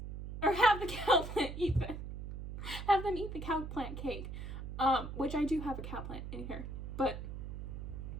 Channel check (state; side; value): noise; right; hum, 7 dB below the sound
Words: Or have the cow plant eat them. Have them eat the cow plant cake. Which I do have a cow plant in here. But